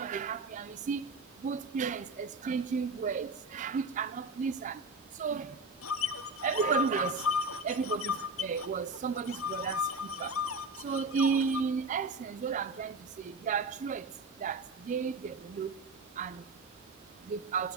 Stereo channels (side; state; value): left; quieter; 3.0 dB